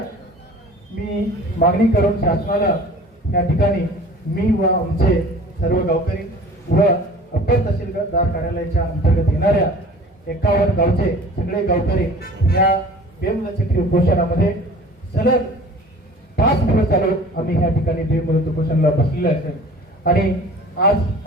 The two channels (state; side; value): normal; both; correlation 0.44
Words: मी मागणी करून शासनाला या ठिकाणी मी व आमचे सर्व गावकरी व अप्पर तहसीलदार कार्यालयाच्या अंतर्गत येणाऱ्या 51 गावचे सगळे गावकरी या बेमुदत उपोषणामध्ये सलग 5 दिवस झालो आम्ही या ठिकाणी बेमुदत उपोषणाला बसलेले असेल आणि आज